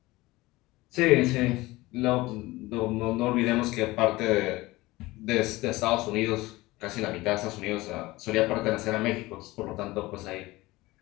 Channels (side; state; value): right; quieter; 19.9 dB